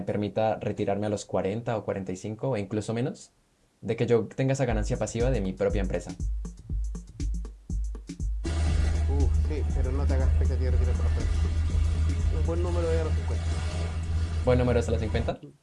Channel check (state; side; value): identical; both; correlation 1.00